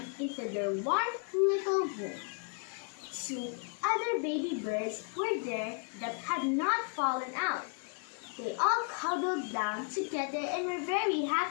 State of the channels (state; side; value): quieter; right; 39.9 dB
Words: into their warm little room. Two other baby birds were there that had not fallen out. They all cuddled down together and were very